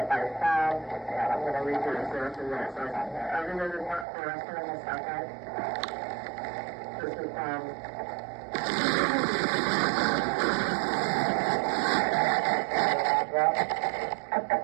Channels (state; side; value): drops out; left; at 4.0 s